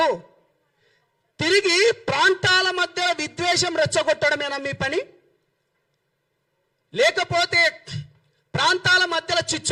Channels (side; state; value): both; identical; correlation 1.00